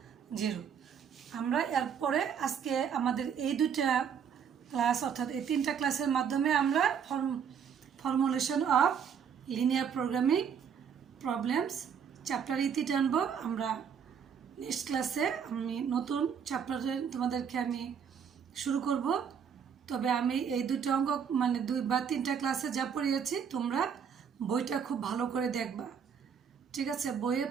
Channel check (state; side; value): quieter; left; 7.4 dB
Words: 0। আমরা এরপরে আজকে আমাদের এই দুটা ক্লাস অর্থাৎ এই 3টা ক্লাসের মাধ্যমে আমরা formulation of linear programming problems chapter ইতি টানবো। আমরা নেক্সট ক্লাসে আমি নতুন চ্যাপ্টারে তোমাদেরকে আমি শুরু করব। তবে আমি এই দুটো অঙ্ক মানে 2 বা 3টা ক্লাসে যা পড়িয়েছি তোমরা বইটা খুব ভালো করে দেখবা, ঠিক আছে? বইয়ের